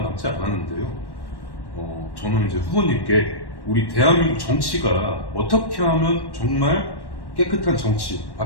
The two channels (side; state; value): right; late; 1.1 ms